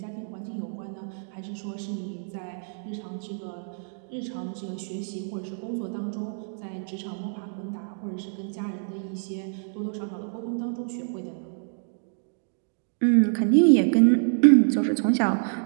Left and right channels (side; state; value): left; silent; digital silence